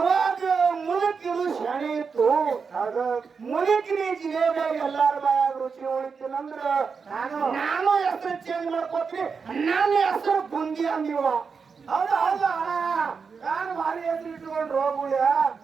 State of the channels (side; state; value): left; quieter; 5.5 dB